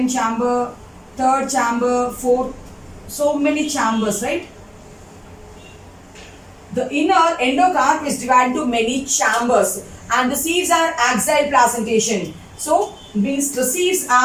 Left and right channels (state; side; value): identical; both; correlation 1.00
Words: chamber, third chamber, fourth. So many chambers, right? The inner endocarp is divided into many chambers, and the seeds are axile placentation. So means the seeds